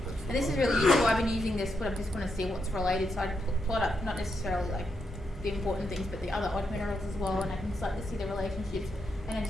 And this is really useful. I've been using this, but I just want to see what's related. So I plot up not necessarily like the important things, but the other odd minerals as well, and I can start to see the relationships. And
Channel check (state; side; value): normal; both; correlation 0.82